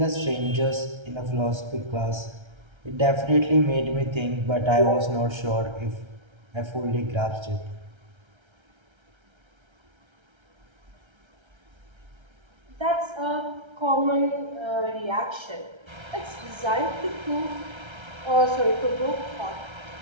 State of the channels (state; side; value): late; left; 1.3 ms